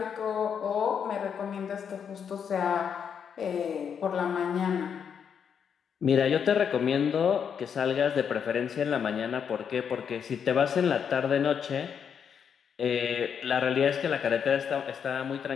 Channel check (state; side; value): quieter; right; 7.4 dB